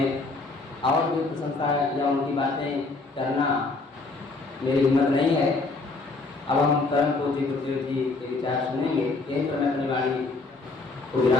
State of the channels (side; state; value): right; quieter; 3.6 dB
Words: और भी प्रशंसा या उनकी बातें करना मेरी हिम्मत नहीं है। अब हम परम पूज्य गुरुदेव जी के विचार सुनेंगे। यहीं पर मैं अपनी वाणी को